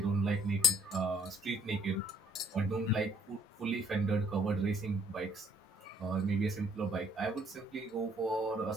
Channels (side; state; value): both; normal; correlation 0.64